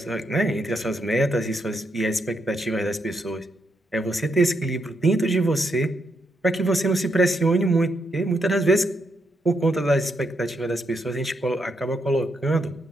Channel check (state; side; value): normal; both; correlation 0.80